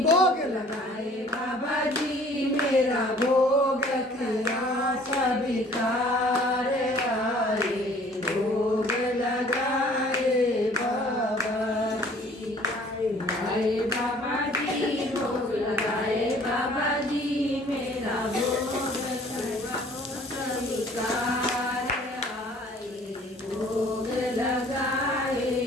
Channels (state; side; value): normal; both; correlation 0.54